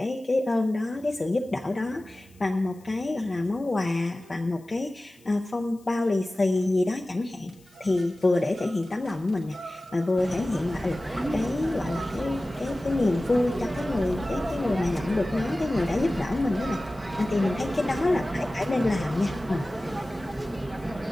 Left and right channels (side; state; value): left; noise; hiss, 30 dB below the sound